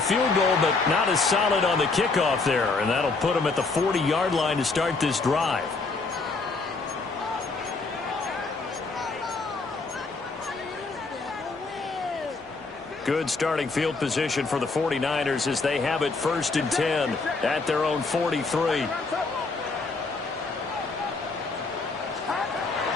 goal, but not as solid on the kickoff there, and that'll put him at the 40-yard line to start this drive. Good starting field position for the 49ers as they have it 1st and 10 at their own 43.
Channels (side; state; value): right; quieter; 3.9 dB